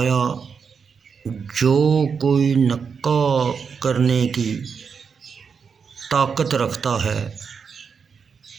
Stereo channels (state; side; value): quieter; left; 6.0 dB